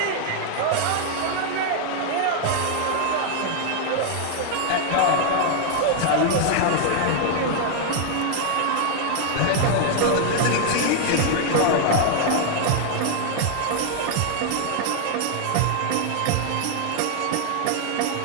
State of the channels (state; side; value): different; both; correlation 0.00